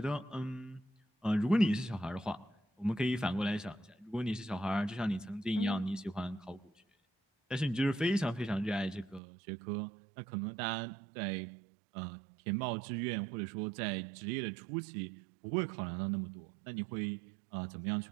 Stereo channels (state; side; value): drops out; left; at 9.2 s